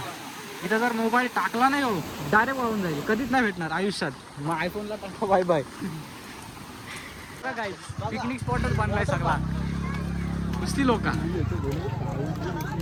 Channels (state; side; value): identical; both; correlation 1.00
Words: इथं जर मोबाईल टाकला नाही हो डायरेक्ट वाहून जाईल, कधीच नाही भेटणार आयुष्यात. मग आयफोनला टाका बाय बाय. काय पिकनिक स्पॉटच बनलाय सगळा, नुसती लोक.